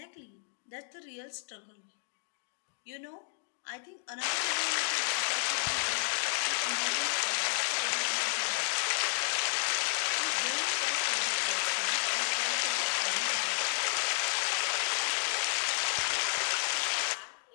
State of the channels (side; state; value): right; silent; digital silence